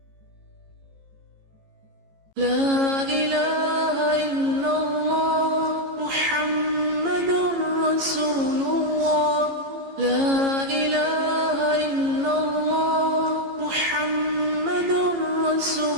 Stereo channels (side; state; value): left; late; 15 ms